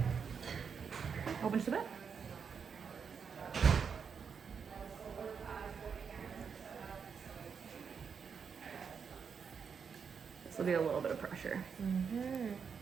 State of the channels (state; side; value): quieter; left; 6.3 dB